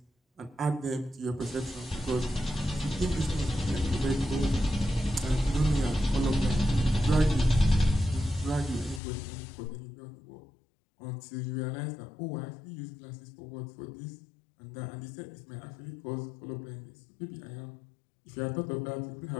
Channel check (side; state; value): right; drops out; at 9.0 s